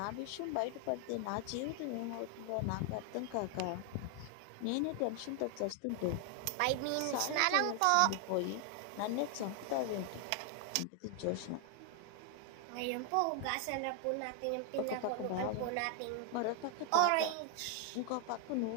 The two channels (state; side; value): different; both; correlation 0.00